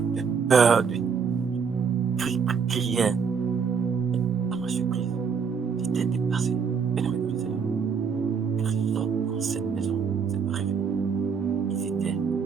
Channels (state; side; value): quieter; left; 6.2 dB